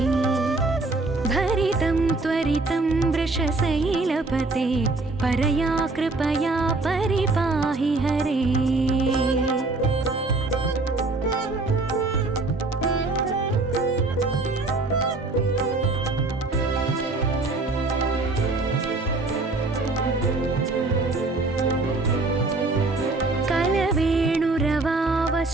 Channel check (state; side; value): quieter; left; 3.3 dB